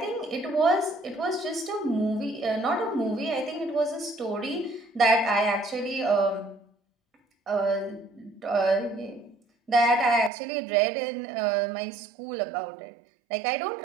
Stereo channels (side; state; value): left; drops out; at 10.3 s